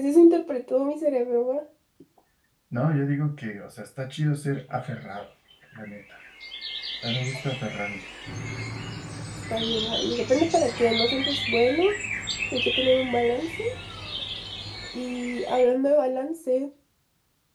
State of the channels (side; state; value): both; identical; correlation 1.00